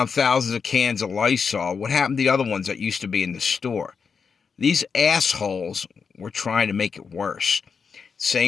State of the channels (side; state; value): right; quieter; 5.8 dB